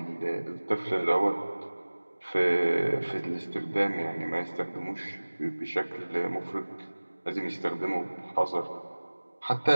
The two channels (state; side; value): inverted; both; correlation -1.00